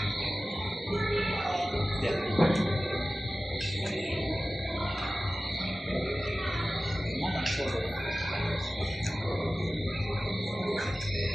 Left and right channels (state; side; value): normal; both; correlation 0.96